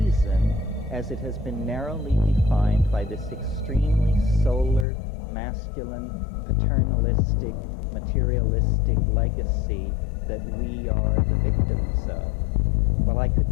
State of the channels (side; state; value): right; drops out; at 4.9 s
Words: as it has been narrowly defined by this extremely solar, masculine, paternalistic, materialistic legacy that we are the victims of. Well, I